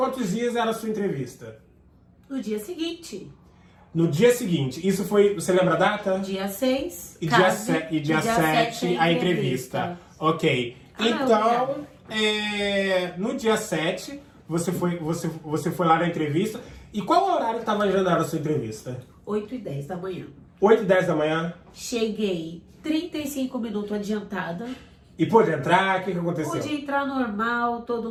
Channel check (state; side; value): identical; both; correlation 1.00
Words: dias era a sua entrevista? No dia seguinte. No dia seguinte. Isso foi... Você lembra a data? Dia 6. E dia 7 a entrevista. Ok. Então, no dia 7, você foi lá na entrevista. E qual o horário que estava agendado a sua entrevista? 8h10 da manhã. 8h10 da manhã? Cheguei 35 minutos adiantada. E pôde entrar? O que aconteceu? Pude entrar normal, todo